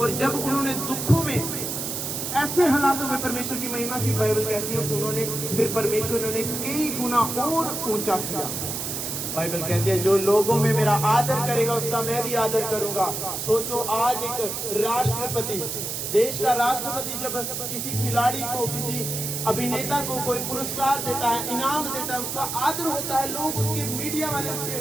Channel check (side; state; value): right; noise; hiss, 4 dB below the sound